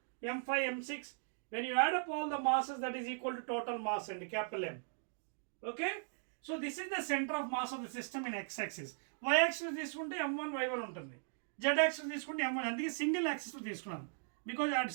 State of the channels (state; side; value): silent; left; digital silence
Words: m5, m6, when you add up all the masses, that is equal to total mass and capital M. Okay? So this is the center of mass of the system in x-axis. Y-axis తీసుకుంటే m1 y1 ఉంటుంది. Z-axis తీసుకుంటే m1. అందుకే single axis తీసుకున్నాను. Because అది